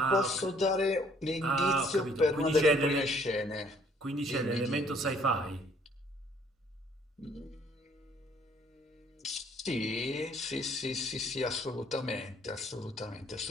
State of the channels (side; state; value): both; normal; correlation 0.61